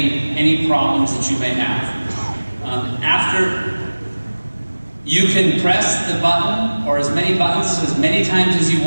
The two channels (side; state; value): both; inverted; correlation -1.00